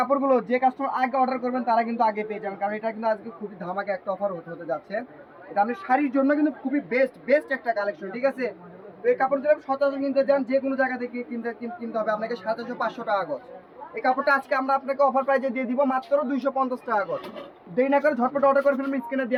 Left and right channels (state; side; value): identical; both; correlation 1.00